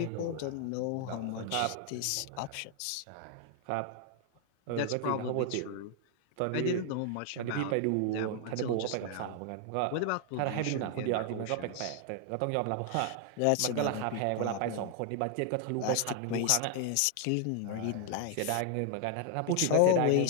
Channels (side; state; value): both; different; correlation 0.00